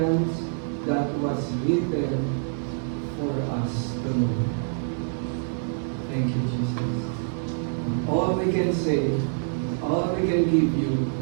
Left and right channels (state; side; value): silent; left; digital silence